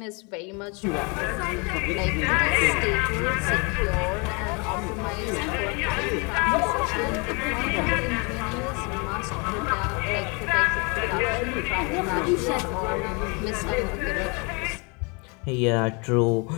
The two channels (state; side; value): quieter; right; 31.8 dB